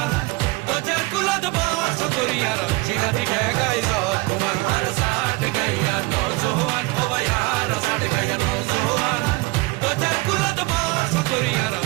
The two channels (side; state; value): left; quieter; 24.1 dB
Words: তো যার কুলত বর্ষ করিয়ার সিনাতি ডেগাই জর তোমার আর সাট গাইয়া নজওয়ান ও ভাই আর সাট গাইয়া নজওয়ান তো যার কুলত বর্ষ করিয়ার